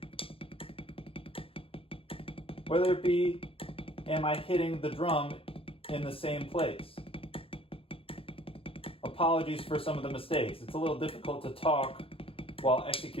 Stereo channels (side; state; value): right; late; 0.27 ms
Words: whether it be, am I hitting the drum in the same place? Apologies for some of the mistakes. It's a little difficult to talk while